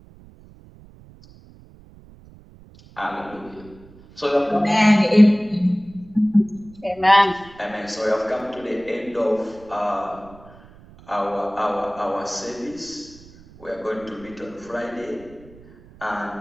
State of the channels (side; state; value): right; noise; rumble, 23 dB below the sound